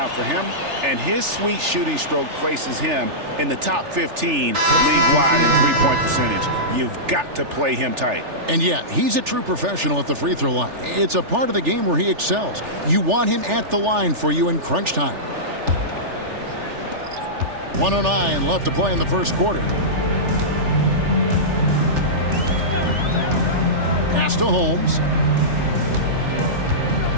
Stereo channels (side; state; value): left; late; 3.4 ms